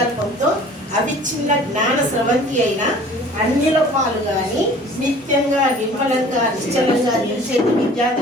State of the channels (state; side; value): normal; both; correlation 0.48